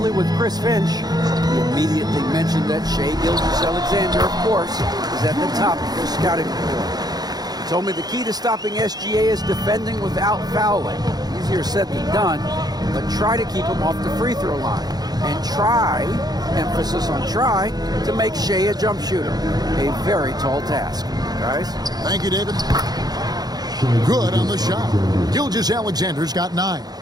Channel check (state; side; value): late; left; 0.19 ms